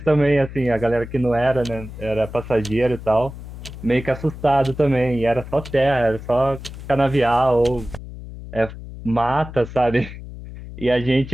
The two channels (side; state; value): left; noise; hum, 12 dB below the sound